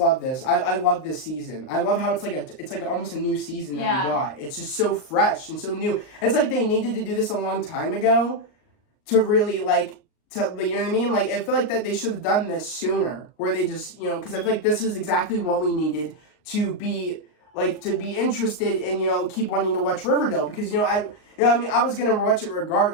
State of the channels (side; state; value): right; late; 38 ms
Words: this. I love this season. I love how it's like almost a new season that we got. It's just so fresh and so new. It's like they needed to do this a long time ago. To really, you know what I mean? I feel like that they should have done this sooner, where they just, because I feel like this is exactly what we needed to be interested in, keep wanting to watch Riverdale, because, I was going to watch it